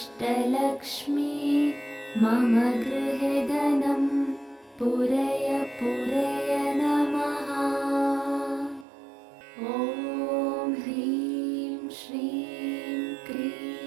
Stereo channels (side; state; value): left; drops out; at 8.8 s